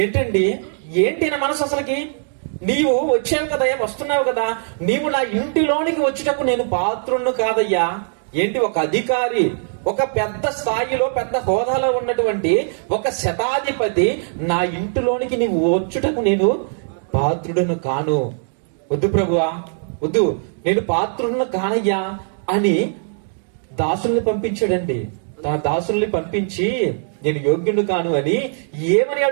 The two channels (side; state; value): left; silent; digital silence